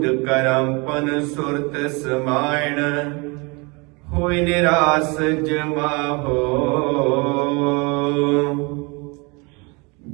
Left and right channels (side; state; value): left; quieter; 28.7 dB